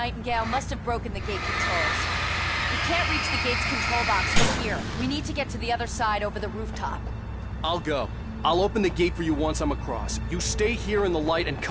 must have broken the gate controls. We can't reach the gate's control box from here. We need to get to the other side over the rooftop. I'll go. I'll open the gate for you once I'm across. You stay here in the light and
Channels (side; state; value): both; identical; correlation 1.00